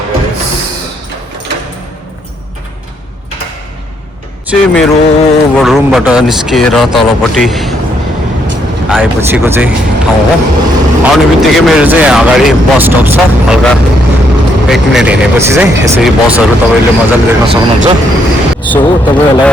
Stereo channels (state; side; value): normal; both; correlation 0.73